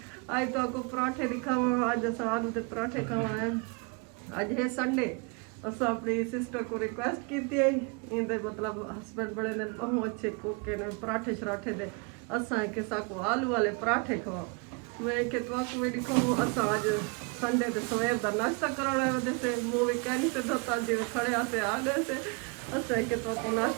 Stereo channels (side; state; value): left; quieter; 30.8 dB